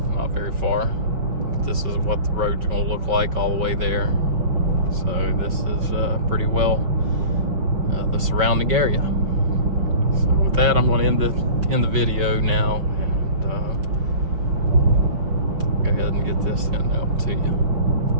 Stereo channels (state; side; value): late; left; 5.7 ms